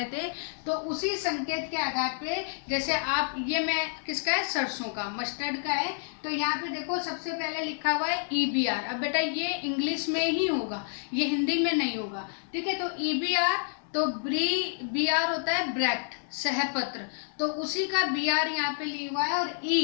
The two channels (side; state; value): right; silent; 59 dB below the other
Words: थे, तो उसी संकेत के आधार पे, जैसे आप, ये मैं किसका है? सरसों का, मस्टर्ड का है। तो यहाँ पे देखो, सबसे पहले लिखा हुआ है EBR। अब बेटा ये इंग्लिश में ही होगा, ये हिंदी में नहीं होगा। ठीक है, तो EBR, तो BR होता है ब्रैक्ट, सहपत्र, तो उसी का BR यहाँ पे लिखा हुआ है। और